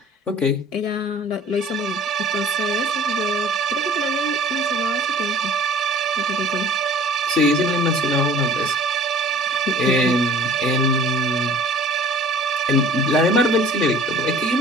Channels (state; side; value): normal; both; correlation 0.48